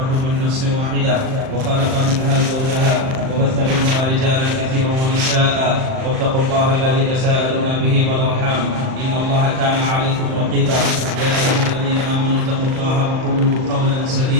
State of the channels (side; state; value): left; late; 38 ms